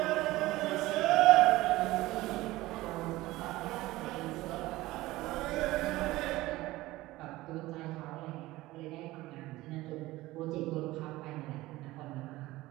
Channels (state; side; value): quieter; left; 18.2 dB